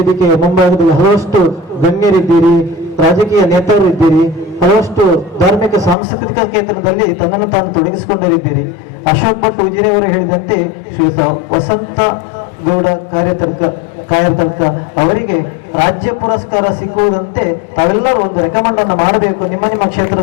ಮುಂಭಾಗದಲ್ಲಿ ಹಲವಷ್ಟು ಗಣ್ಯರಿದ್ದೀರಿ, ರಾಜಕೀಯ ನೇತಾರರಿದ್ದೀರಿ, ಹಲವಷ್ಟು ಧಾರ್ಮಿಕ ಸಾಂಸ್ಕೃತಿಕ ಕ್ಷೇತ್ರದಲ್ಲಿ ತನ್ನನ್ನು ತಾನು ತೊಡಗಿಸಿಕೊಂಡರಿದ್ದೀರಿ. ಅಶೋಕ್ ಭಟ್ ಉಜಿರೆಯವರು ಹೇಳಿದಂತೆ ಶ್ರೀಯುತ ವಸಂತ ಗೌಡ ಕಾರ್ಯತರ್ಕ ಅವರಿಗೆ ರಾಜ್ಯ ಪುರಸ್ಕಾರ ಸಿಕ್ಕುವುದಂತೆ ತಾವೆಲ್ಲರೂ ಒಂದು ರೆಕಮೆಂಡ್ ಅನ್ನು ಮಾಡಬೇಕು ನಿಮ್ಮ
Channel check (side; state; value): right; drops out; at 6.0 s